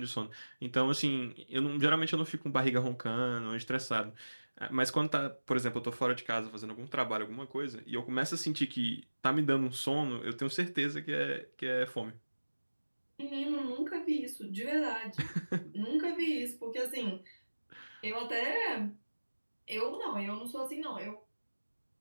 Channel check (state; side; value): inverted; both; correlation -1.00